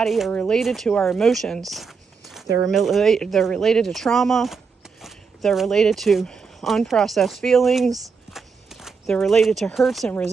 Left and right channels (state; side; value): quieter; left; 5.4 dB